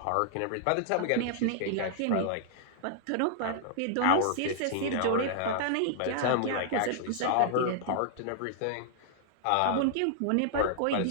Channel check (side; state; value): both; different; correlation -0.01